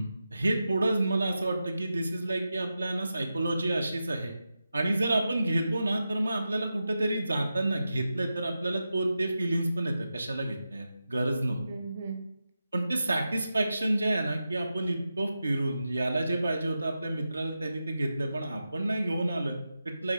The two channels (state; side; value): inverted; both; correlation -0.91